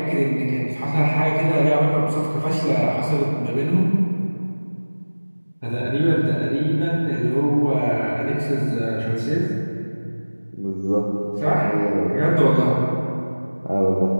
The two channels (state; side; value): inverted; both; correlation -1.00